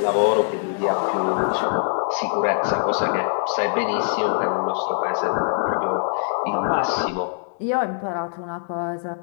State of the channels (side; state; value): right; silent; digital silence